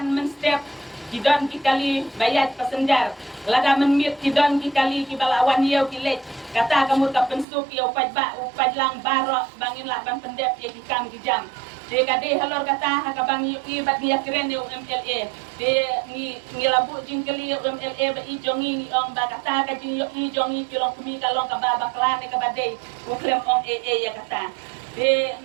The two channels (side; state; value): left; drops out; at 7.5 s